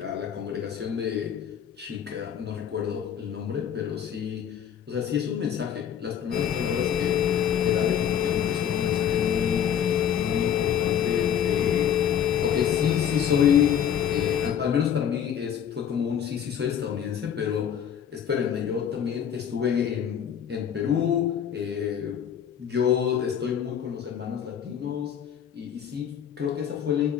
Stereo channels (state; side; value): quieter; right; 8.9 dB